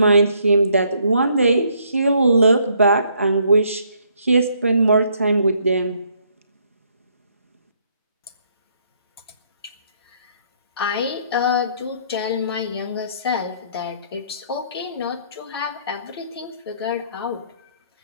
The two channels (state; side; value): inverted; both; correlation -0.68